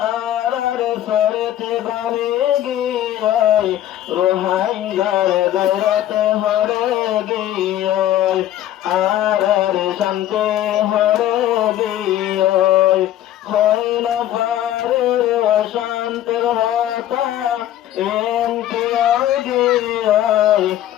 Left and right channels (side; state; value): right; quieter; 12.4 dB